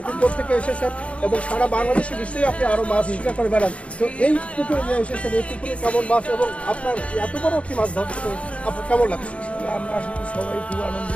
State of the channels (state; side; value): late; right; 0.062 ms